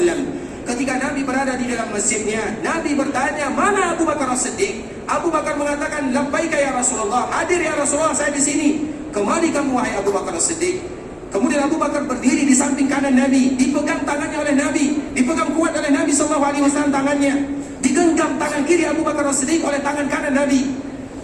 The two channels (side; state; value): both; identical; correlation 1.00